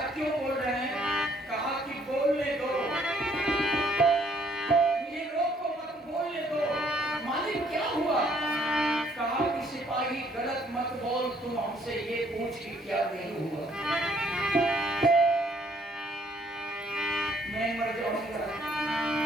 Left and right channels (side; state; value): both; normal; correlation 0.65